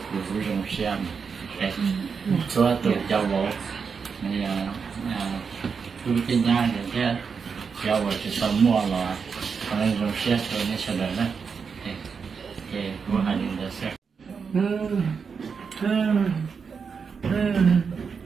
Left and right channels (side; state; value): left; quieter; 5.8 dB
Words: cụ dùng xem cái số tự cho bộ này cụ tin nhá để cái cho bộ sẽ xong mua là nên dùng xem rồi nên sẽ được đấy cái cụ hành được xem